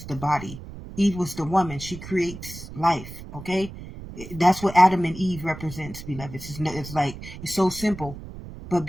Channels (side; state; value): right; noise; rumble, 13 dB below the sound